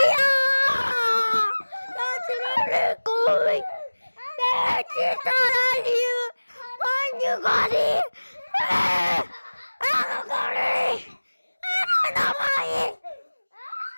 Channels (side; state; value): both; inverted; correlation -1.00